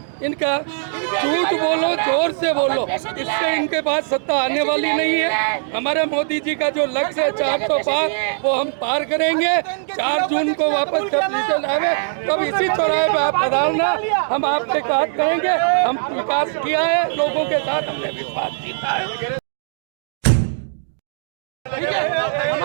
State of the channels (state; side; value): silent; left; digital silence